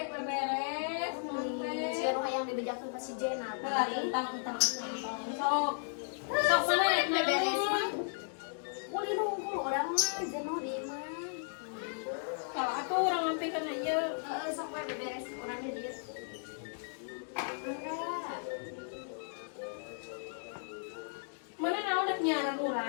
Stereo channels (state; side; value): silent; right; digital silence